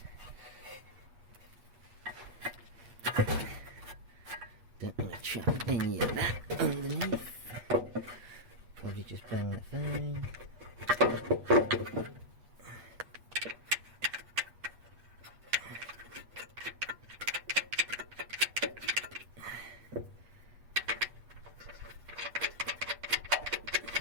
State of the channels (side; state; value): left; late; 8.3 ms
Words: Don't want to trap any of that underneath. Probably just bang the phone.